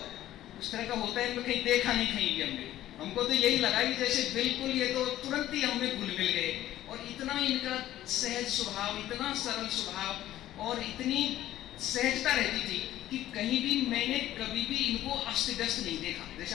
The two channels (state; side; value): quieter; right; 13.6 dB